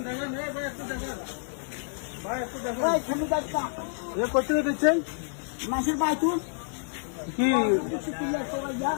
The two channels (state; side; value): silent; right; digital silence